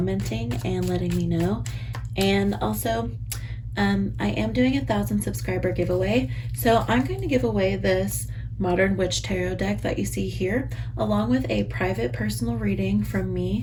and letting me know. And also, I am doing a 1,000 subscriber giveaway, so I'm going to give away this Modern Witch Tarot deck that you see here, along with a private personal reading from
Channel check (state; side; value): identical; both; correlation 1.00